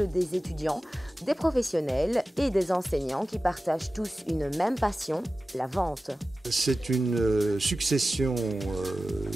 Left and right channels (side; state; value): both; normal; correlation 0.95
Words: des étudiants, des professionnels et des enseignants qui partagent tous une même passion, la vente. C'est une succession